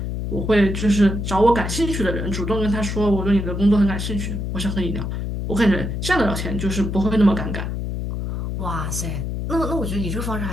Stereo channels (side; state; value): left; noise; hum, 3 dB below the sound